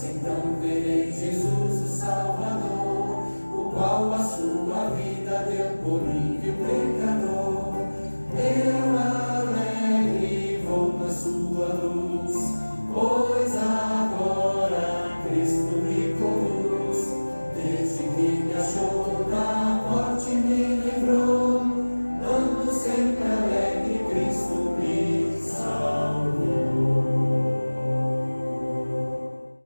então verei Jesus o Salvador, o qual a sua vida deu por mim, viu pecador. Eu alegre vou na sua luz, pois agora Cristo me conduz. Desde que me achou, da morte me livrou, ando sempre alegre, Cristo me salvou.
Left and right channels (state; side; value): inverted; both; correlation -1.00